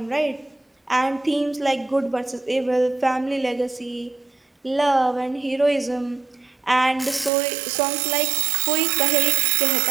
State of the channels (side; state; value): left; drops out; at 7.3 s